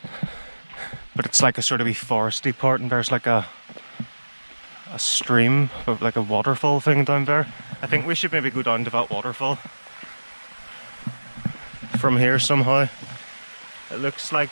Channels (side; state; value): both; inverted; correlation -1.00